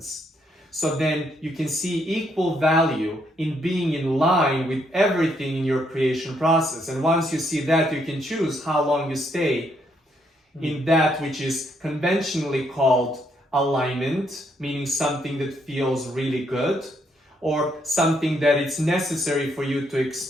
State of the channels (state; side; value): normal; both; correlation 0.73